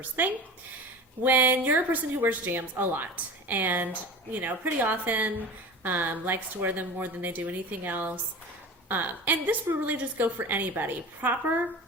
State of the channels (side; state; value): both; normal; correlation 0.33